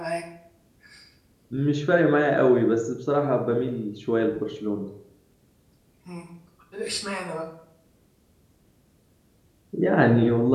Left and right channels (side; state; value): both; identical; correlation 1.00